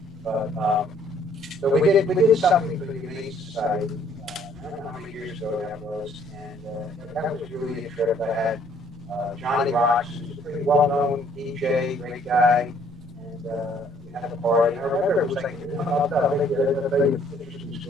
So we did something for the Humane Society. I don't know how many years ago that was, and that was really a trip. I had Johnny Rocks, who's a pretty well-known DJ, great guy, and we had a party. I remember it was like, I'll tell you an interesting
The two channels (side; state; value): right; noise; rumble, 24 dB below the sound